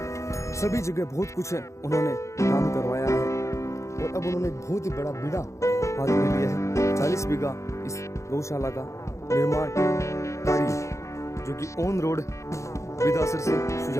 सभी जगह बहुत कुछ है उन्होंने काम करवाया है। और अब उन्होंने बहुत ही बड़ा बीड़ा हाथ में लिया है। 40 बीघा इस गौशाला का निर्माण कार्य, जो कि ऑन रोड बिदासर से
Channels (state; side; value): late; right; 0.14 ms